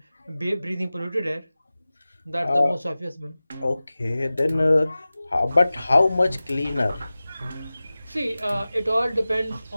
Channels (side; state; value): both; inverted; correlation -0.97